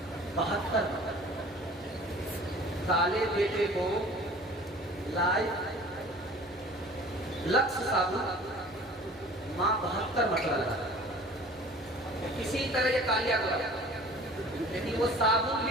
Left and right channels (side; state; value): both; normal; correlation 0.46